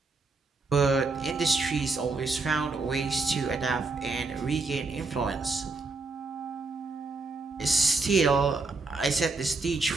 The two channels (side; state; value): left; quieter; 3.8 dB